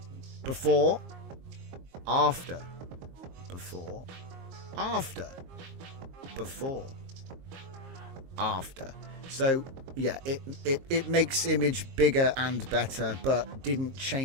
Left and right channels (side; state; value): left; late; 22 ms